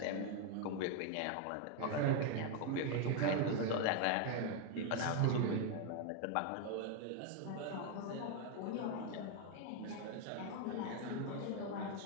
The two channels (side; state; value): both; different; correlation 0.00